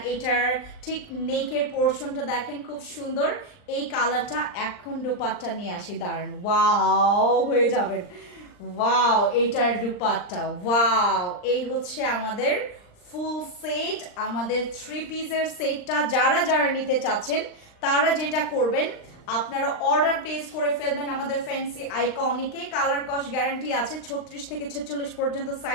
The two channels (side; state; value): right; late; 39 ms